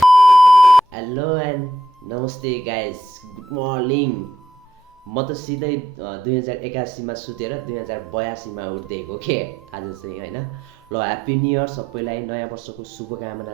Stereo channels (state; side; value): normal; both; correlation 0.78